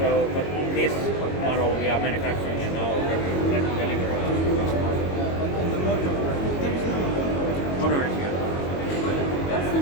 but this model we are manufacturing and now we're delivering to customers. On the motor, there is no Motor is here. That's the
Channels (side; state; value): right; late; 22 ms